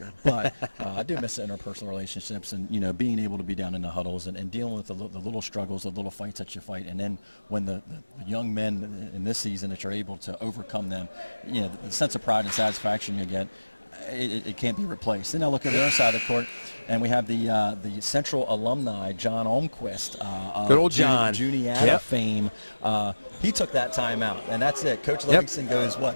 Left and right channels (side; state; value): both; inverted; correlation -1.00